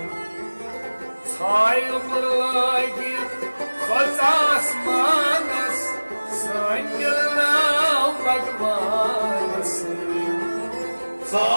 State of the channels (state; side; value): inverted; both; correlation -1.00